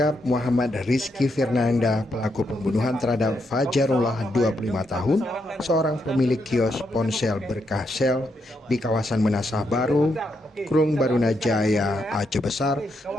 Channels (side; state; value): both; normal; correlation 0.80